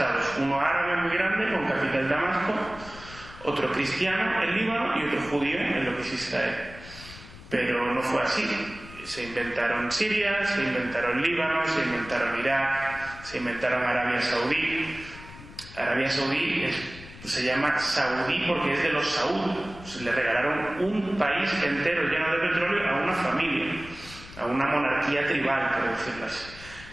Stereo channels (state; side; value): noise; left; rumble, 17 dB below the sound